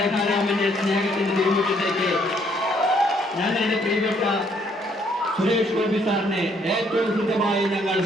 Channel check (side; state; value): both; normal; correlation 0.67